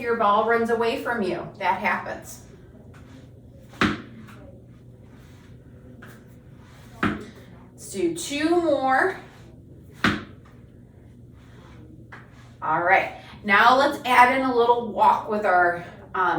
your ball runs away from you. That happens. Let's do 2 more. All right, now let's add in a little walk with our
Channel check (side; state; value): both; identical; correlation 1.00